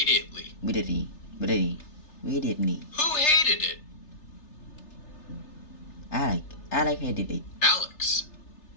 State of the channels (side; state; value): right; late; 3.3 ms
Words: Immediately. Immediately. Who hated it? Alex hated it. Alex.